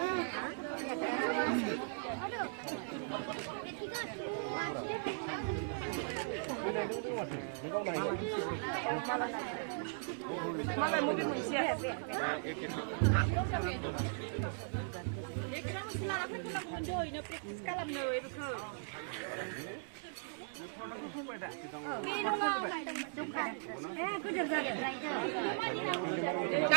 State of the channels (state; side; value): silent; left; digital silence